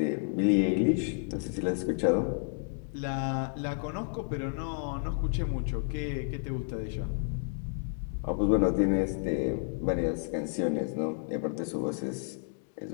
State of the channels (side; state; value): right; silent; digital silence